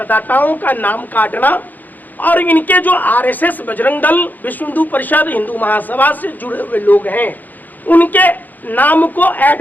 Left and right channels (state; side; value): late; right; 0.084 ms